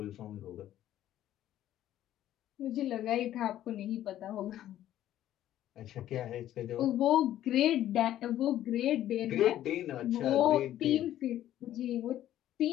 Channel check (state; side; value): quieter; right; 12.6 dB